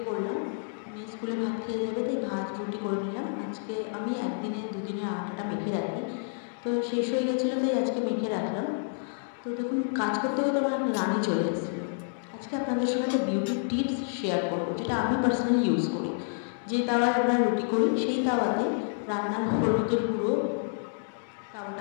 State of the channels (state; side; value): silent; right; digital silence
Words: পড়লাম। মেয়ে স্কুলে ভাত খেয়ে যাবে, তাই ভাত রুটি করে নিলাম। আজকে আমি একদিনে দুদিনে আটাটা মেখে রাখি, তো শেষ হয়ে গেছিলো, তাই আজকে মেখে রাখলাম। তো দেখুন, কাজ করতে করতে আমার রানী চলে এসেছিলো। আজকে আপনাদের সঙ্গে একটা বিউটি টিপস শেয়ার করবো, যেটা আমি পার্সোনালি ইউজ করি। যে তাওয়ায় আমরা রুটি করি, সেই তাওয়াতে রান্নার হলুদের গুঁড়ো